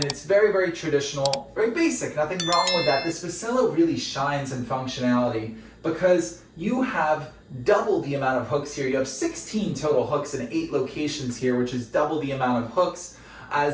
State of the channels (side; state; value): both; identical; correlation 1.00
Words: it's very, very traditional, very basic, nothing wrong with that. This VECELO really shines in functionality because you have double the amount of hooks here. You have 16 total hooks in 8 locations here, which is double the amount of hooks